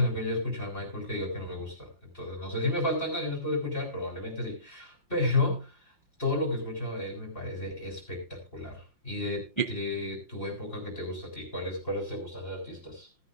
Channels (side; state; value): right; late; 5.7 ms